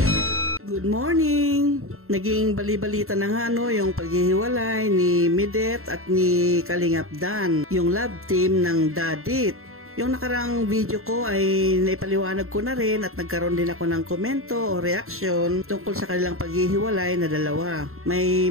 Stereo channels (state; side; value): late; left; 0.62 ms